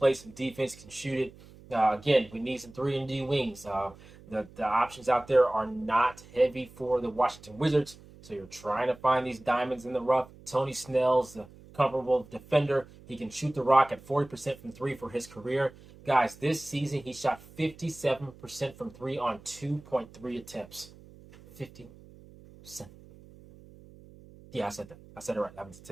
some defense, can shoot it. Again, we need some 3 and D wings. The options out there are not heavy for the Washington Wizards. So you're trying to find these diamonds in the rough. Tony Snell's a comparable defender. He can shoot the rock at 40% from 3 for his career. Guys, this season he shot 57% from 3 on 2.3 attempts. 57. Yeah, I said that. I said it right. I'm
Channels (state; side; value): noise; right; hum, 21 dB below the sound